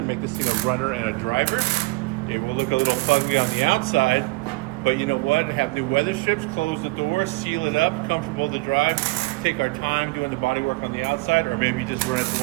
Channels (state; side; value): quieter; left; 25.0 dB